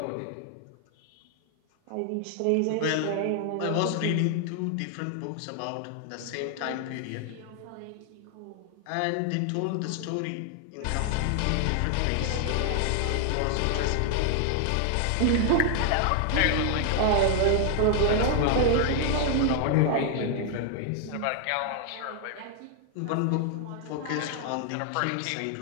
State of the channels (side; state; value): both; different; correlation 0.00